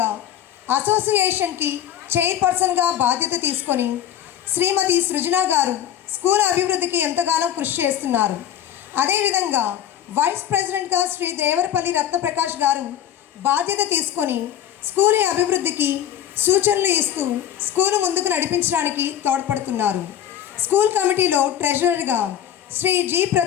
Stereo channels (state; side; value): quieter; right; 10.4 dB